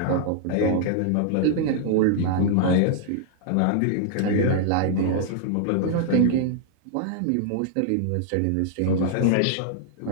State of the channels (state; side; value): different; both; correlation -0.01